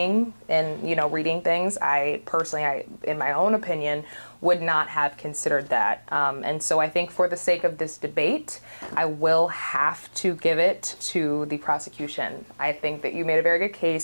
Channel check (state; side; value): inverted; both; correlation -1.00